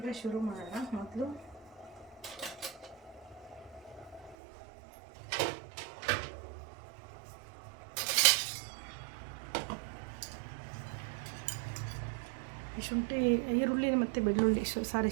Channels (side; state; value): left; drops out; at 4.4 s